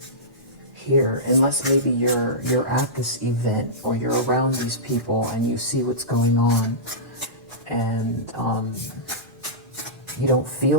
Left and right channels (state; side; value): normal; both; correlation -0.17